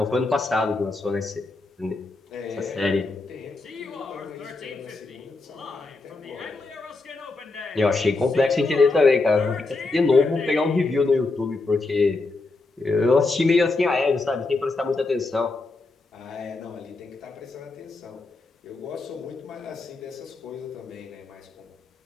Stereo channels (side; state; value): right; quieter; 3.5 dB